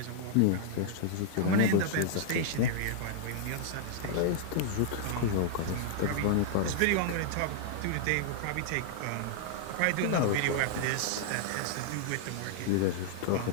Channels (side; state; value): both; different; correlation -0.01